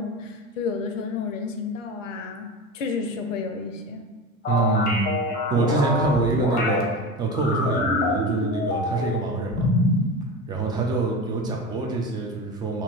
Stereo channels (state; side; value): normal; both; correlation 0.27